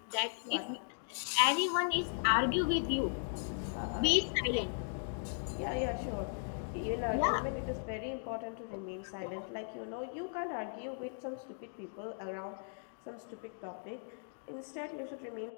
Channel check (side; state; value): right; silent; digital silence